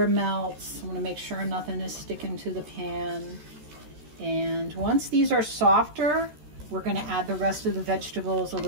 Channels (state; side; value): late; left; 13 ms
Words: melts. I want to make sure nothing is sticking to the pan. And once these are softer, we're going to add the rest of the vegetables, a